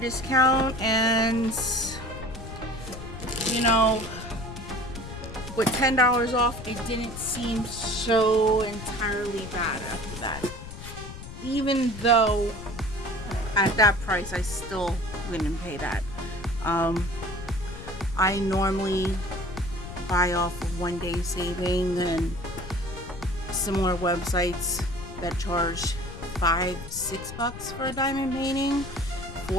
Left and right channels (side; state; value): left; noise; rumble, 12 dB below the sound